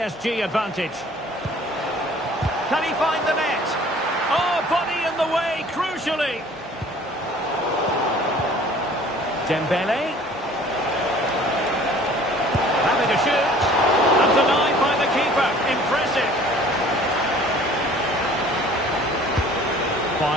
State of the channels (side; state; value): both; normal; correlation 0.51